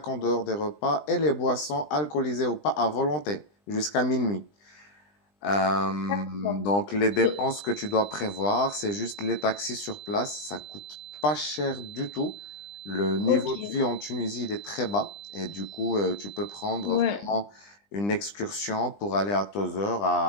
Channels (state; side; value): late; right; 20 ms